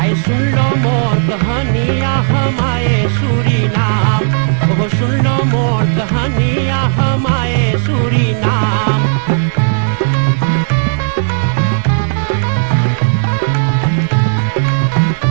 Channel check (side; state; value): left; silent; digital silence